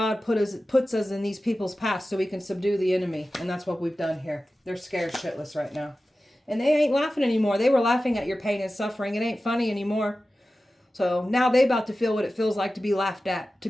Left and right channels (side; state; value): both; normal; correlation 0.95